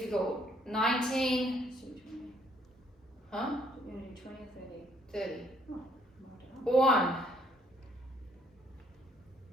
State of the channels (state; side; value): normal; both; correlation 0.66